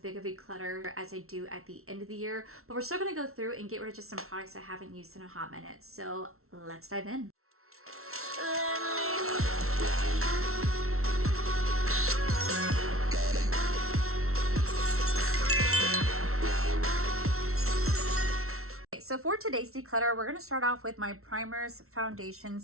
of a clutter as I do at the end of the year, but we're still gonna go through and get rid of just some products I haven't used in a hot minute. So let's dive in. So for today's declutter, we're going to start off with my primers,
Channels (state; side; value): late; left; 0.63 ms